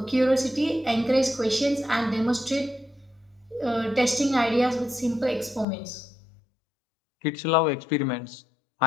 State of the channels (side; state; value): right; drops out; at 5.7 s